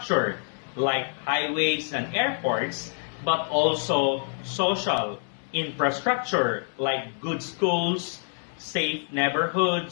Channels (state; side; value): silent; right; 61 dB below the other